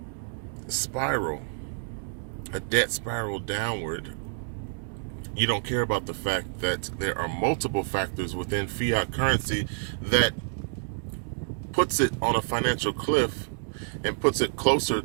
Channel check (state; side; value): silent; left; digital silence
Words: spiral, a debt spiral downward. You don't care about the fact that there are multiple factors within fiat currency that puts it on a financial cliff and puts it closer